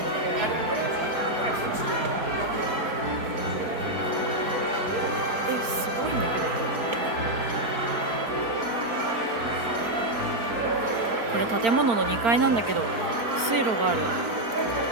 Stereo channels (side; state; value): left; late; 4.3 ms